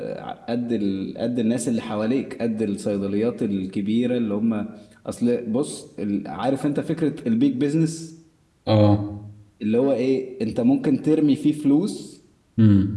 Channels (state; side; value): identical; both; correlation 1.00